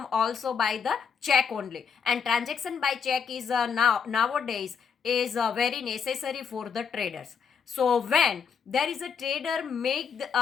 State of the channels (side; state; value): right; quieter; 6.5 dB